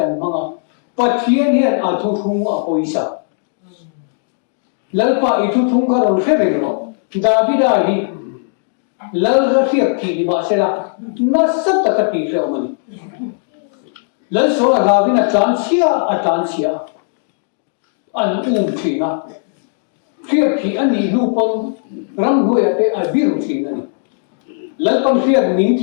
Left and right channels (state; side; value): silent; right; digital silence